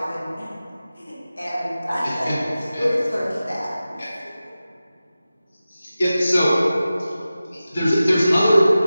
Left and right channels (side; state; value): both; inverted; correlation -0.95